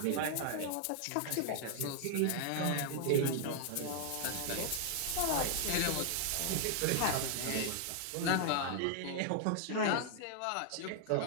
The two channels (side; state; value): both; different; correlation 0.00